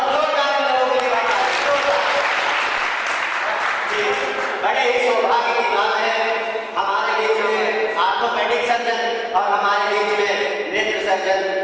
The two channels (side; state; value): both; identical; correlation 1.00